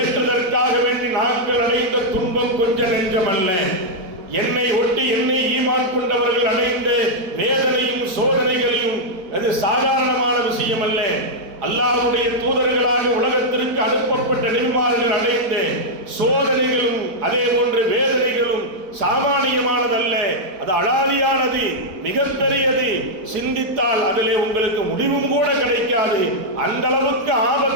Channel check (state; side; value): late; left; 4.8 ms